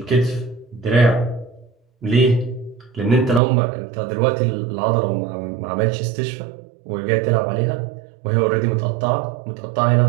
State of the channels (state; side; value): drops out; left; at 3.4 s